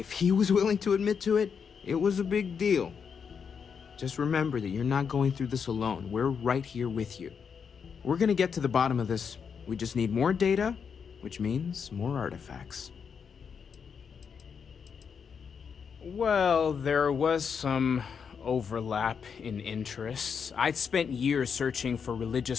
he was willing to admit to it, it was a big deal. Just remember that you're not going through this alone. We're right here with you. We're gonna get to the bottom of this. We just need more data, which means more artifacts. Well, there was some overlap in interests. I'd spent years searching for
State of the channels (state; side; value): quieter; right; 6.5 dB